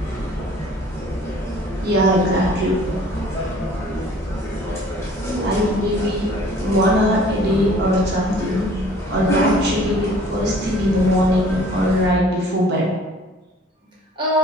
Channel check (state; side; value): normal; both; correlation 0.53